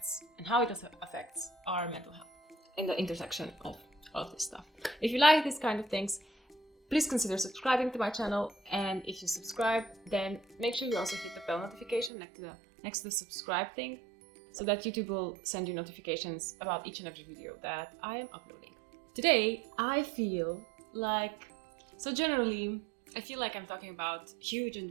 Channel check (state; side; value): drops out; left; at 12.1 s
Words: and how it affects our mental health in the intersection of all of this stuff. If you like these kind of things, please consider subscribing to my channel, and if you subscribe, then make sure you also hit the bell notification next to the subscribe thing, so that YouTube will send you notifications about each and every video that I am uploading. Today, I feel like I'm talking about huge